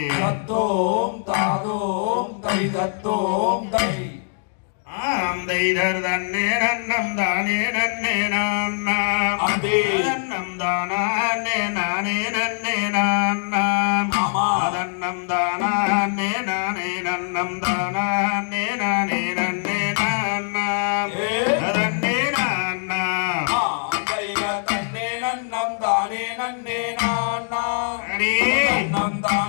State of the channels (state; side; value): silent; right; digital silence